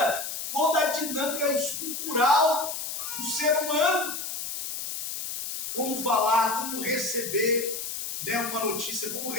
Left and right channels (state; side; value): noise; left; hiss, 5 dB below the sound